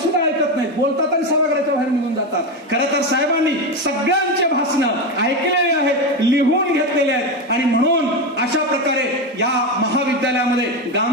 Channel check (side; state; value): both; normal; correlation 0.15